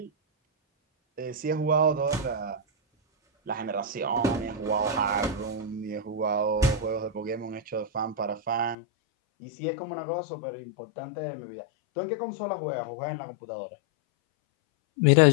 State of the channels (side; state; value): right; drops out; at 8.8 s